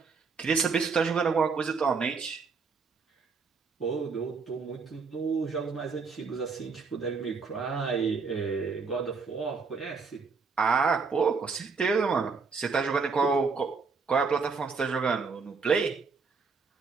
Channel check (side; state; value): left; quieter; 4.9 dB